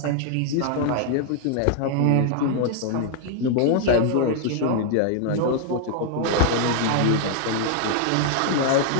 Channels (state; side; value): different; both; correlation 0.00